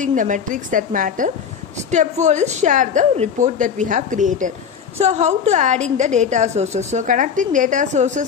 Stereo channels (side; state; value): right; quieter; 7.0 dB